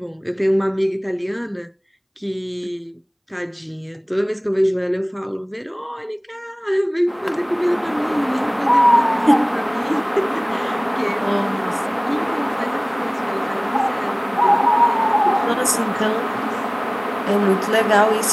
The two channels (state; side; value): identical; both; correlation 1.00